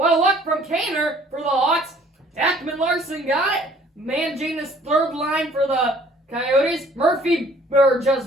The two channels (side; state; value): both; normal; correlation 0.57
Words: a look from Kaner for the Hawks. Ekman Larson got it. Managing this third line for the Coyotes. Murphy, or